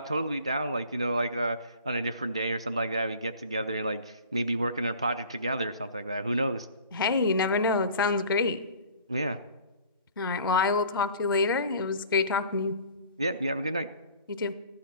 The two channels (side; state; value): both; inverted; correlation -0.48